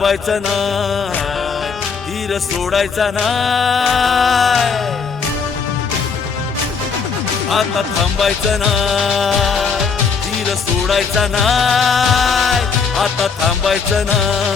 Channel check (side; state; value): right; quieter; 5.6 dB